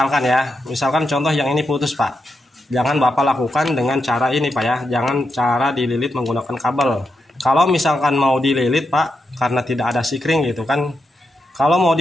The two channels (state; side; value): normal; both; correlation 0.85